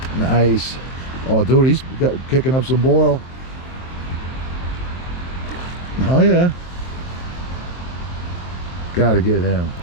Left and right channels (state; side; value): late; right; 23 ms